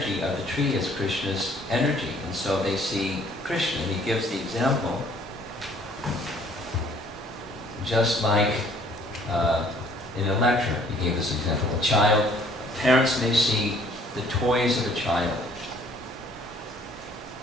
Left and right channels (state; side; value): normal; both; correlation 0.59